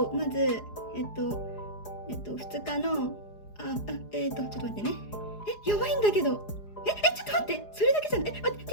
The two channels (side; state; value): right; late; 4.8 ms